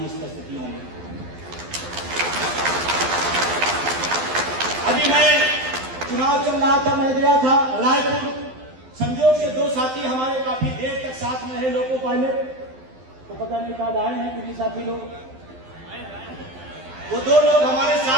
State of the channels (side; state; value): left; late; 12 ms